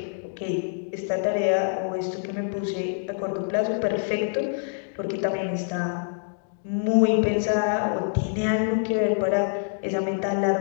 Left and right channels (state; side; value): silent; right; digital silence